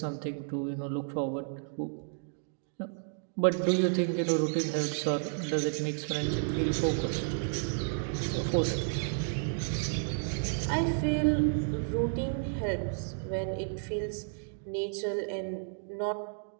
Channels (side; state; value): left; silent; digital silence